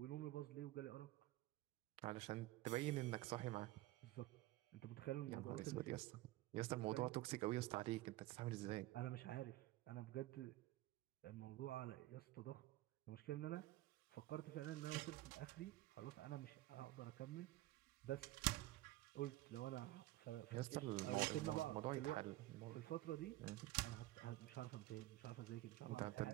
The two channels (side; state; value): left; quieter; 16.8 dB